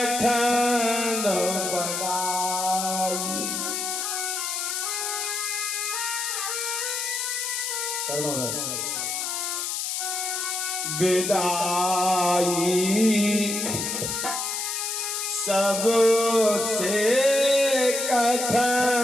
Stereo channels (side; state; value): left; noise; hiss, 2 dB below the sound